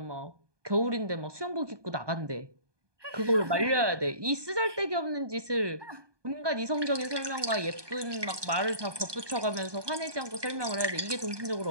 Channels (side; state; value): left; late; 1.2 ms